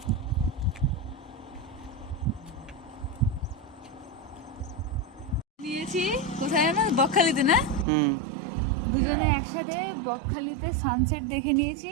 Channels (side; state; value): left; drops out; at 7.9 s